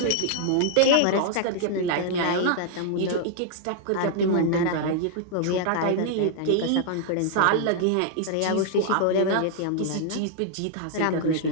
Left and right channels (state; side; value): different; both; correlation 0.00